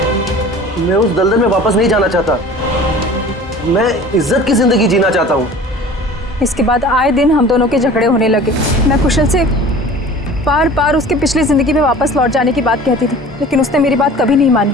मैं उस दलदल में वापस नहीं जाना चाहता। मैं इज्जत की जिंदगी जीना चाहता हूँ। इसके बाद आए दिन हम दोनों के झगड़े होने लगे। मैं कुशल से बार बार उसकी पिछली जिंदगी में वापस लौट जाने की बात कहती थी, लेकिन उसने मेरी बात कभी नहीं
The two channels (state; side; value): normal; both; correlation 0.43